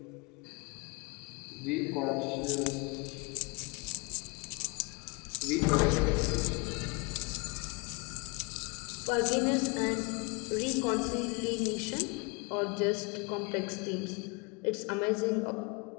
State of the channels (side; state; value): right; quieter; 29.5 dB